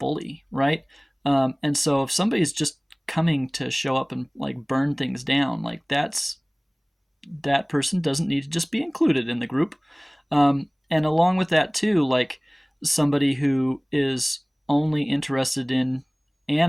right? And so if somebody's just coming to show up and like burn things down, like that person doesn't need to just be included in the group. And along with that too, like somebody who is only interested in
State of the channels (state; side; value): identical; both; correlation 1.00